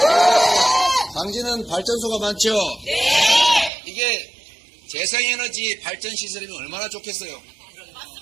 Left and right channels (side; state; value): left; drops out; at 3.7 s